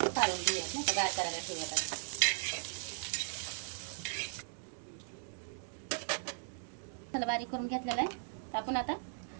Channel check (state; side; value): silent; left; digital silence